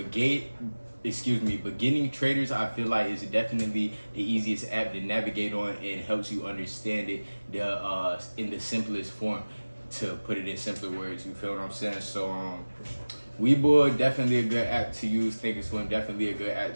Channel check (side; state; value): both; inverted; correlation -1.00